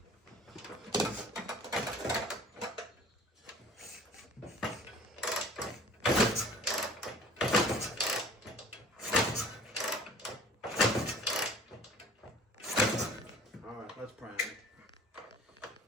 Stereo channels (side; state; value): both; normal; correlation 0.48